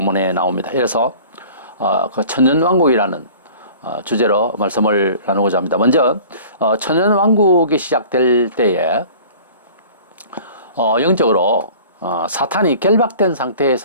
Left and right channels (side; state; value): both; inverted; correlation -0.45